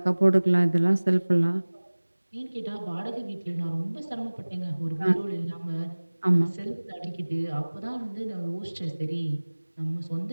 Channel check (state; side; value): inverted; both; correlation -1.00